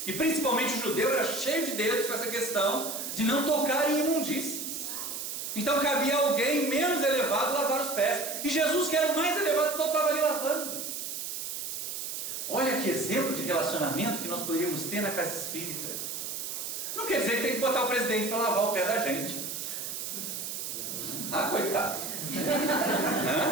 E principalmente o judeu era cheio de dedos com essa questão de não tocar em imundícies. Então cabia alguém menos elevado lavar os pés. E Jesus, que era o mais elevado, então estava ali lavando. Olha que exemplo de relacionamento que nós poderíamos ter na casa espírita. Não quer dizer que tem que botar o presidente para lavar o pé da gente. Ah, coitado.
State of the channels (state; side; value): noise; right; hiss, 5 dB below the sound